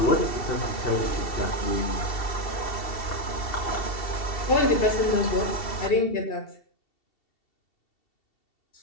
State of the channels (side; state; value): right; late; 2.7 ms